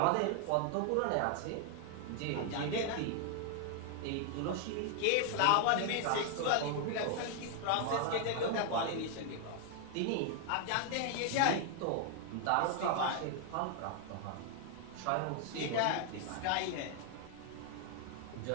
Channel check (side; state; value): both; different; correlation 0.00